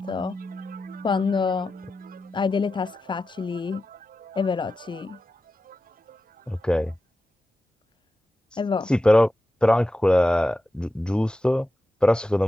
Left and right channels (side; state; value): both; normal; correlation 0.92